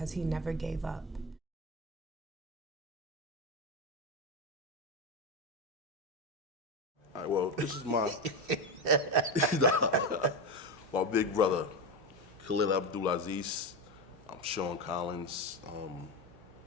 he never gave up. All right, well, this is my my big brother, Khalil Abdul Aziz. I'm Sean Collins. I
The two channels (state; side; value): normal; both; correlation 0.16